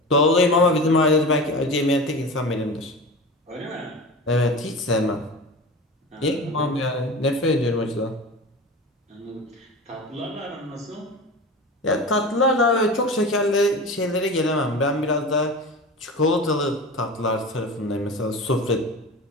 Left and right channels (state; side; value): normal; both; correlation 0.31